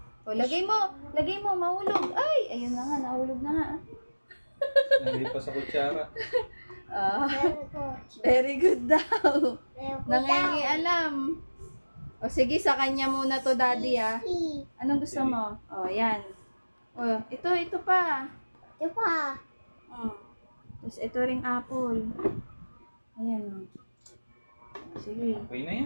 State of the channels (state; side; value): inverted; both; correlation -1.00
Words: O, lagay mo, mahulog. Ay, ayun na nga, nahulog na nga. Hindi pa sa kutsara. Very good daw. Nangingialam. O sige, sa kanya muna to, daddy, ah. Anong gusto mo? O, yan. O, ito pa. Tapos ito ring apple. Ayan. Sige. Okay na